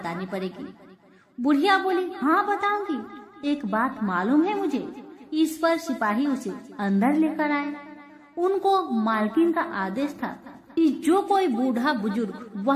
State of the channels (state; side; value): identical; both; correlation 1.00